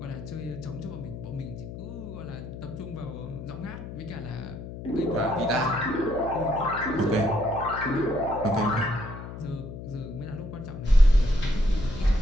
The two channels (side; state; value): left; noise; hum, 10 dB below the sound